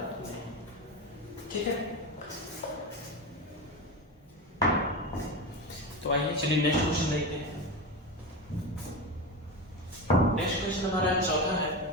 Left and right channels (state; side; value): normal; both; correlation 0.22